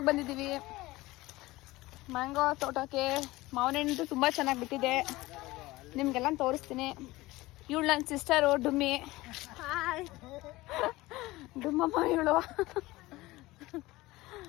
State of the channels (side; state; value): right; quieter; 19.4 dB